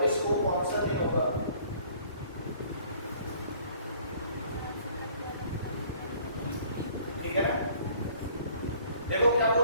को कौन सा दिन होगा? ठीक है ना? देखो क्या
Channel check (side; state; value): both; inverted; correlation -0.56